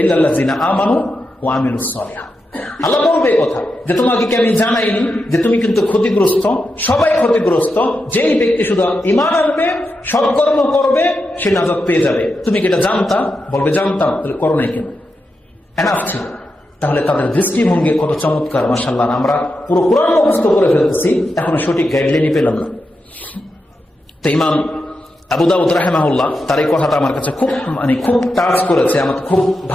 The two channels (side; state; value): both; normal; correlation 0.87